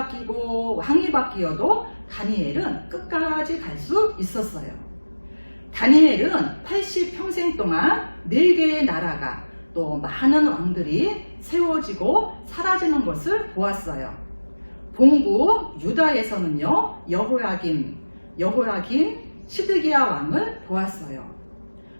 왕이 바뀌어도 다니엘은 끝까지 갈 수 있었어요. 다니엘은 80평생 동안 4개의 나라가 또 많은 왕들이 세워지고 사라지는 것을 보았어요. 본국 유다에서는요, 여호야김, 시드기야 왕을 보았어요.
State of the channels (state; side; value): inverted; both; correlation -1.00